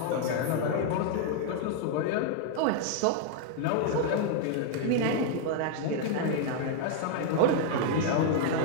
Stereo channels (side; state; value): both; different; correlation -0.01